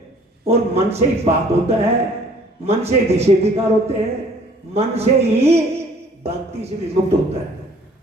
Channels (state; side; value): normal; both; correlation 0.55